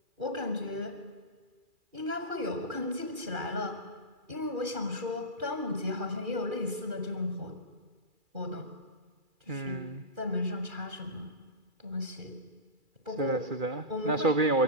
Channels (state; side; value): late; left; 2.4 ms